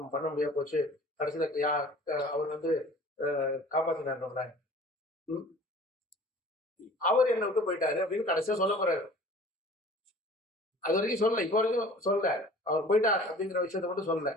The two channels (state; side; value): normal; both; correlation 0.46